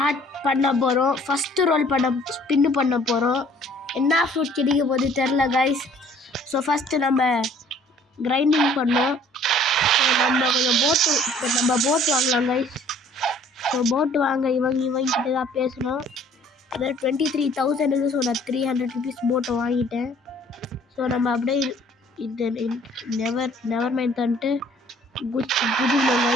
பண்ண போகிறோம். ஃபஸ்ட்டு ரோல் ஸ்பின்னு பண்ண போகிறோம். என்ன ஃப்ரூட் கிடைக்க போது தெரில கைஸ். ஸோ ஃபஸ்ட்டு நம்ம கிரைண்டிங் பண்ணோம். ஸோ நம்ம கொஞ்சம் போட்டு வாங்கலாம் கைஸ். ஸோ போட்டு வாங்க இவங்கிட்ட தான் பேசணும். அதாவது 23,000. ஸோ நான் 300 rupees போட்டு வாங்கிட்டேன். ஸோ நம்ம அப்படியே இது நெவர் மைண்ட் தந்துட்டு குதிக்கணும்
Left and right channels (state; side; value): normal; both; correlation 0.56